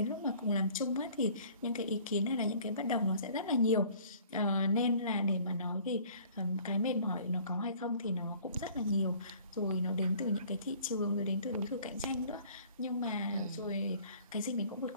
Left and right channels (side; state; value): both; inverted; correlation -0.53